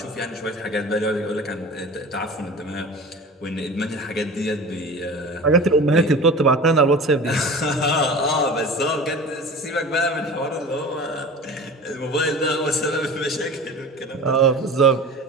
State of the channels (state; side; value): normal; both; correlation 0.36